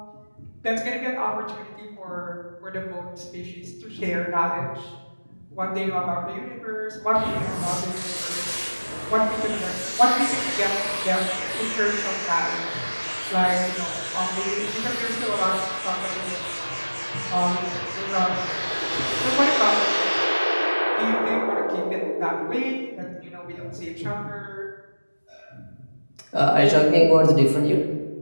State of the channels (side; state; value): both; inverted; correlation -1.00